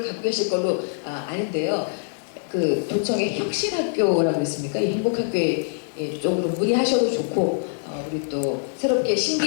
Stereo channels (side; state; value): right; silent; 63 dB below the other